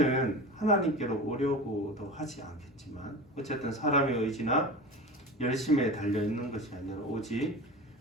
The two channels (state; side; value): normal; both; correlation 0.31